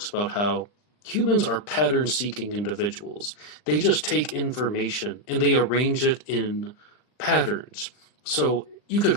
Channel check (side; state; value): right; late; 39 ms